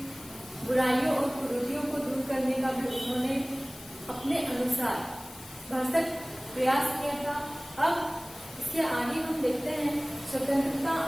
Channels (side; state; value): left; noise; hiss, 17 dB below the sound